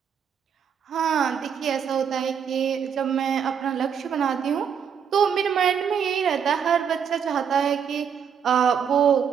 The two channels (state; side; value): quieter; left; 7.5 dB